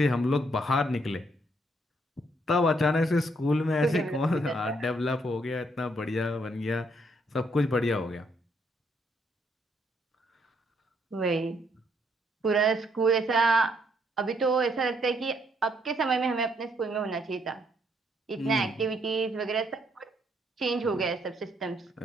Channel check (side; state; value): both; normal; correlation 0.72